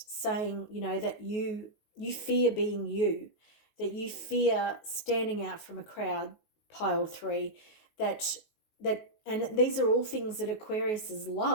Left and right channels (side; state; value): right; late; 19 ms